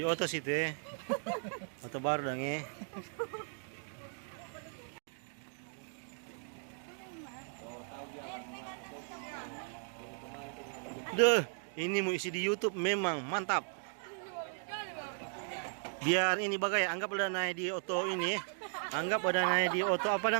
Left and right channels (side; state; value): left; silent; 53 dB below the other